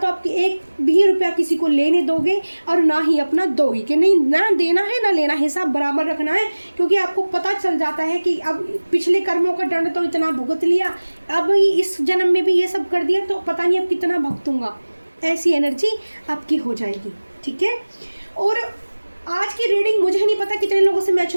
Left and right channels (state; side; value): inverted; both; correlation -1.00